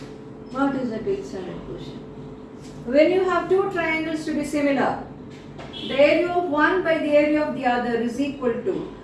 What is that 8th standard question? When you have two triangles to be similar, the area of one by the area of the other is equal to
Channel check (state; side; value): identical; both; correlation 1.00